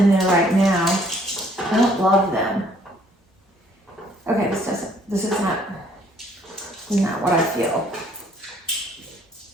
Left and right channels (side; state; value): both; normal; correlation 0.62